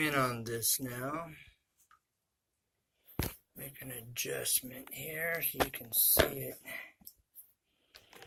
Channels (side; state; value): both; identical; correlation 1.00